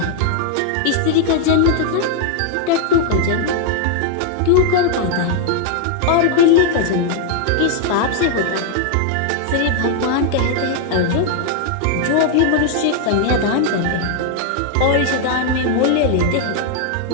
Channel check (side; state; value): both; different; correlation 0.00